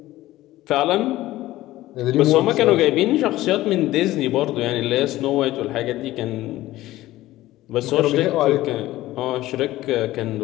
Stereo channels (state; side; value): quieter; right; 16.2 dB